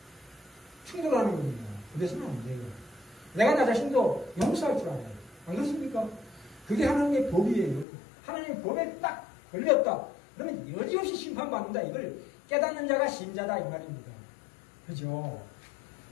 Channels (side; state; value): right; drops out; at 7.9 s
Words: 충돌하는 겁니다. 그래서는 안 돼요. 내가 나 자신도 용서할 줄 알아요. 안 그렇습니까? 그게 하나님의 법이에요. 하나님의 법에 딱 걸렸다. 그러면 여지없이 심판받는다. 이걸 깨닫는 자가 신자다 이 말입니다. 그죠?